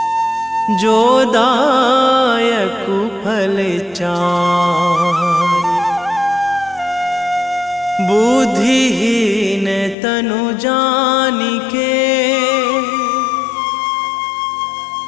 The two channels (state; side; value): drops out; right; at 10.0 s